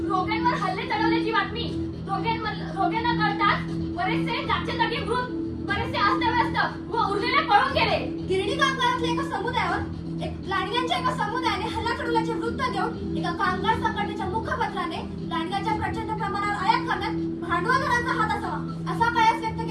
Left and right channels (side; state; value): both; identical; correlation 1.00